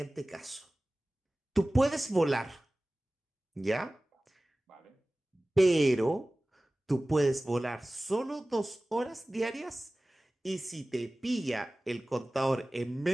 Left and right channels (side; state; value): both; normal; correlation 0.98